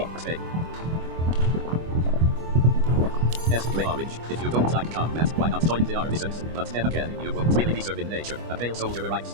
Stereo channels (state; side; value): late; left; 25 ms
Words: S gray orange. If you don't like combat, why not join the artisans? But then again, you won't really be serving nature. A pale soldier arrives.